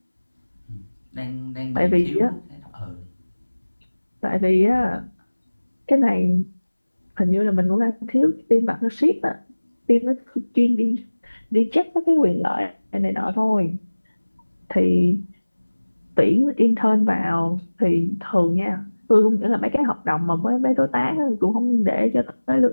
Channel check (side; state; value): both; inverted; correlation -1.00